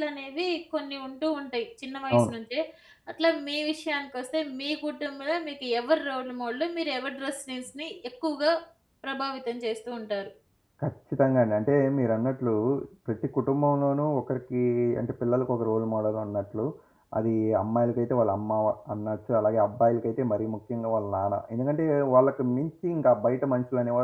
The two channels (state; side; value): identical; both; correlation 1.00